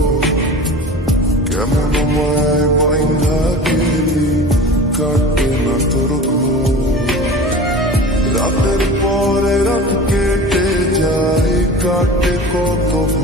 কেমন মায় বাইন্ধা গেলি কাটে না তোর ঘোর রাতের পরে রাত কেটে যায় কাটে কত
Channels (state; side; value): normal; both; correlation 0.36